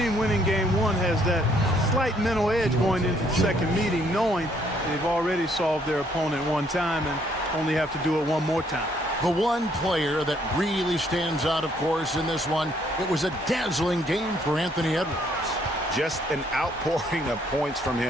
winning game 1 has that slight mental edge going into the second meeting, knowing they've already solved their opponent one time and only have to do it one more time. The one player that really stands out, of course, in this one, it was a dazzling game for Anthony Edwards. Just an outpouring of points from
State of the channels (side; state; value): both; normal; correlation 0.67